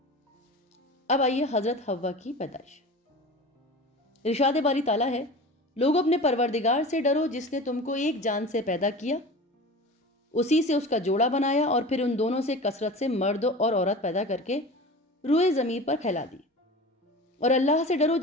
اب آئیے حضرت حوا کی پیدائش۔ ارشاد باری تعالیٰ ہے، لوگوں اپنے پروردگار سے ڈرو جس نے تم کو ایک جان سے پیدا کیا، اسی سے اس کا جوڑا بنایا اور پھر ان دونوں سے کثرت سے مرد اور عورت پیدا کر کے روئے زمین پر پھیلا دی۔ اور اللہ سے ڈرو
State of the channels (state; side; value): normal; both; correlation 0.34